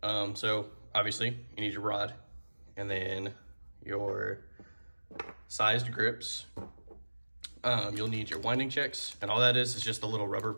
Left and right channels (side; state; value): both; inverted; correlation -1.00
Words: So obviously you need your rod and then your sized grips. You'll need your winding checks, and all that is just the little